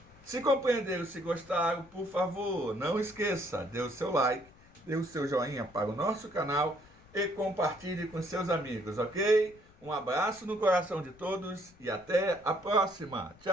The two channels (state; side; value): noise; left; rumble, 26 dB below the sound